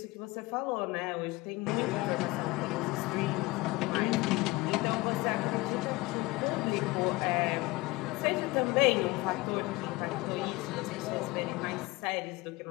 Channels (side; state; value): right; quieter; 21.7 dB